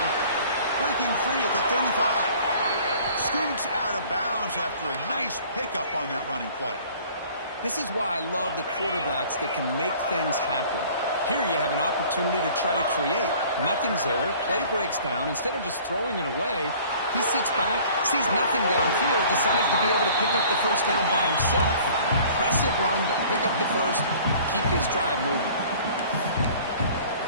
Breaking free at the 35. Scoots out of bounds after a nice pickup on that running play. This is why I love the quarterbacks that can make things happen. Here you have an opportunity to try to create. Nothing's there. Play breaks down. Instead of just throwing it away, he sits back, sees nothing downfield, decides to be able to pick up the first down by himself. Impressive run to pick up the first, keep his drive moving.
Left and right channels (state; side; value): inverted; both; correlation -0.50